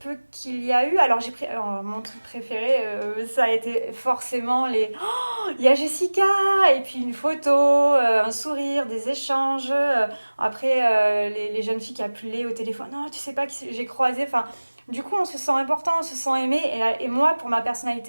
qu'il y a eu, alors j'ai pris alors, mon truc préféré, ça a été forcément les oh, il y a Jessica et puis une photo, un sourire, des échanges. Après les jeunes filles qui appelaient au téléphone, non, tu sais pas qui j'ai croisé. Enfin, du coup, on se sent important, on se sent aimé. Et moi, pour ma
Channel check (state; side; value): inverted; both; correlation -1.00